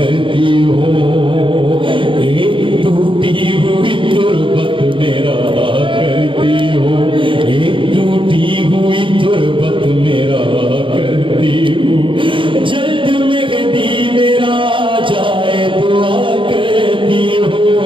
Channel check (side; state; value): left; late; 0.25 ms